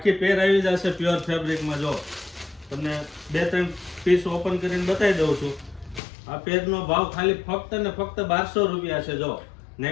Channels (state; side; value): drops out; right; at 6.0 s